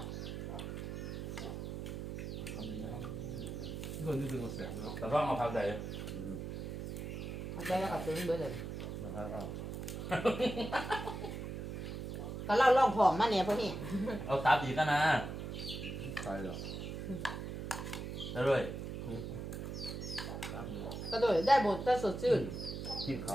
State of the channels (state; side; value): noise; right; hum, 5 dB below the sound